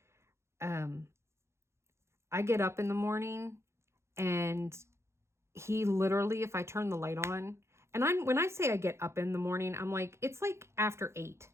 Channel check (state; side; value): late; left; 0.13 ms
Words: I get up in the morning and he literally, if I turn the light on, and when I say I get up in the morning, I'm like, it's like after 8,